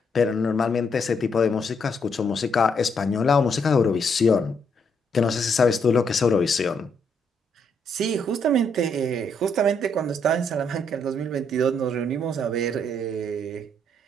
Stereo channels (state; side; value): normal; both; correlation 0.73